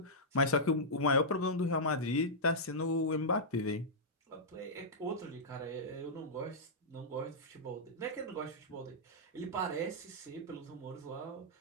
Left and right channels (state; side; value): normal; both; correlation -0.11